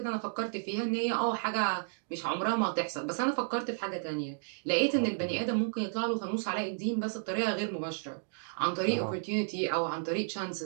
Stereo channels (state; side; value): silent; left; digital silence